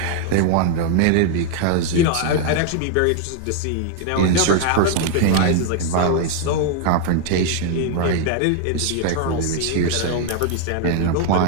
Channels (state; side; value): different; both; correlation 0.00